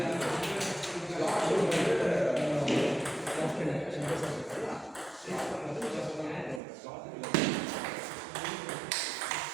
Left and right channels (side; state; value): left; drops out; at 6.6 s